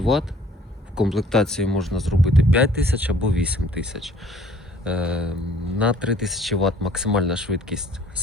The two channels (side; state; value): both; normal; correlation 0.55